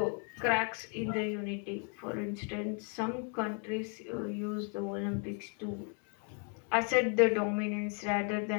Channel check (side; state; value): right; quieter; 39.8 dB